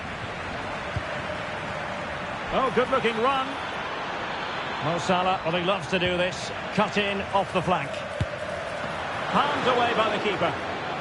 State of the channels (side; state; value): both; identical; correlation 1.00